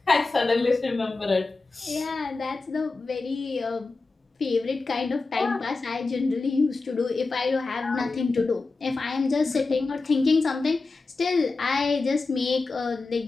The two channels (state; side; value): quieter; right; 3.7 dB